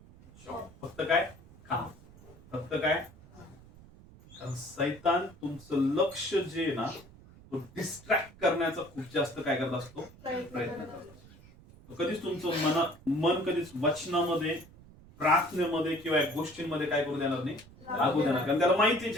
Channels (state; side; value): noise; right; rumble, 22 dB below the sound